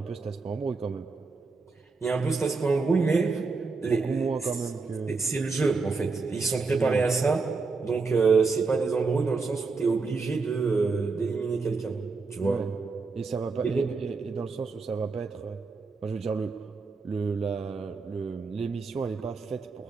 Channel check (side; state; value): left; quieter; 4.3 dB